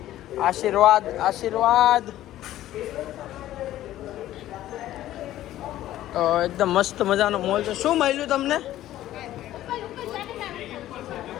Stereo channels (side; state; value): right; quieter; 13.8 dB